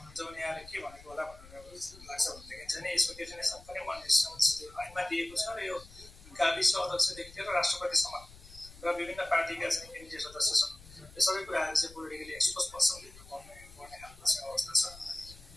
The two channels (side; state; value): left; noise; rumble, 20 dB below the sound